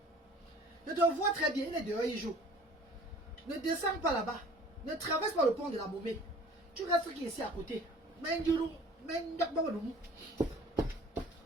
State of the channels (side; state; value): both; normal; correlation 0.49